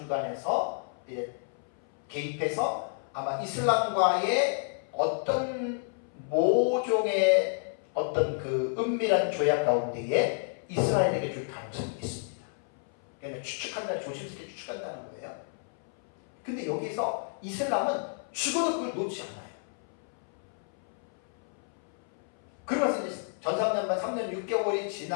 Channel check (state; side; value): silent; right; 58 dB below the other